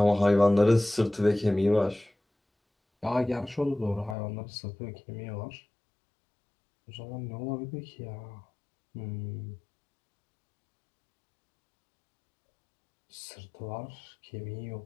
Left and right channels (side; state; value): right; drops out; at 4.2 s